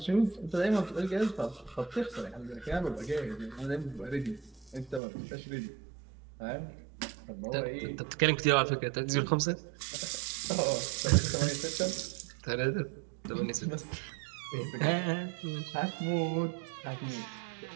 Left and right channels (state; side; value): drops out; left; at 5.0 s